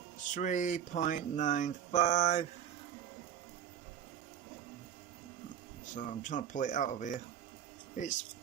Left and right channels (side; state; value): left; quieter; 9.3 dB